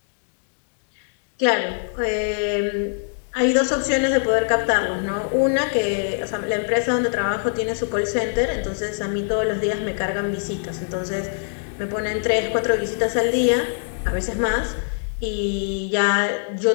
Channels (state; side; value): silent; right; digital silence